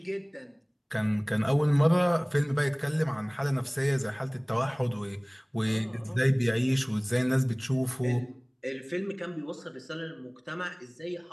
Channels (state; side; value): identical; both; correlation 1.00